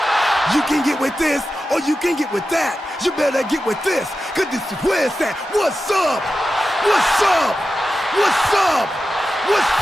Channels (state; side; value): normal; both; correlation 0.92